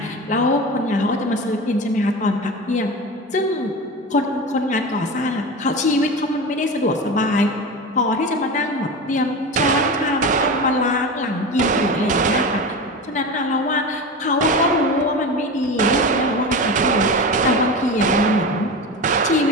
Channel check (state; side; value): normal; both; correlation 0.26